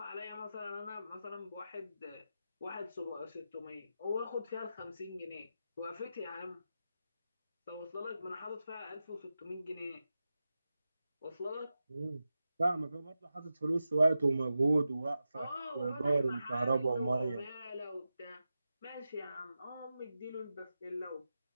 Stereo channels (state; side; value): inverted; both; correlation -0.91